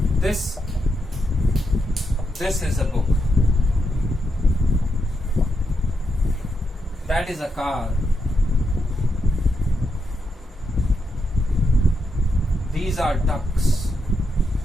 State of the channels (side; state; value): both; normal; correlation 0.83